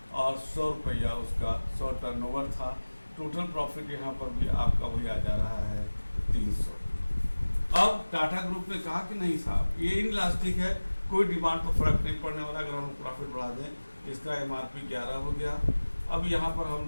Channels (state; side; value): inverted; both; correlation -1.00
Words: और 100 रुपया उसका 100 टर्नओवर था. टोटल प्रॉफिट यहाँ पर भी आपका वही आ जा रहा है 300. अब टाटा ग्रुप ने कहा कि नहीं साहब, ये इनइलास्टिक है, कोई डिमांड पर फर्क नहीं पड़ने वाला. अगर हम प्रॉफिट बढ़ा दें, इसका MRP 11 हो गया. अब यहाँ पर हम